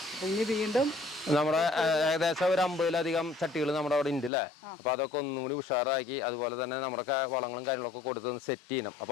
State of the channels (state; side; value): drops out; right; at 4.3 s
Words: അപ്പൊ ഇനി വീണ്ടും നമ്മുടെ ഏകദേശം ഒരു 50-ലധികം ചട്ടികൾ നമ്മുടെ അവിടെ ഉണ്ട് അല്ലേ. അപ്പൊ അതൊക്കെ ഒന്നും കൂടി ഉഷാറാക്കി, അതുപോലെ തന്നെ നമ്മുടെ വളങ്ങളും കാര്യങ്ങളൊക്കെ കൊടുത്ത് സെറ്റ് ചെയ്യണം. അപ്പൊ